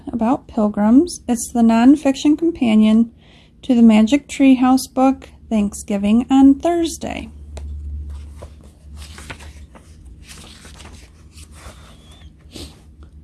about Pilgrims. It's the non-fiction companion to the Magic Treehouse book, Thanksgiving on Thursday.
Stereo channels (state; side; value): identical; both; correlation 1.00